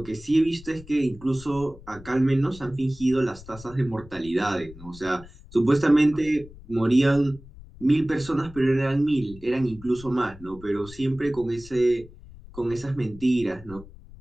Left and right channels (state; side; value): noise; left; rumble, 19 dB below the sound